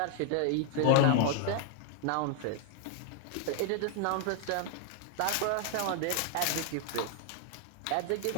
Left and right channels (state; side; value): different; both; correlation 0.00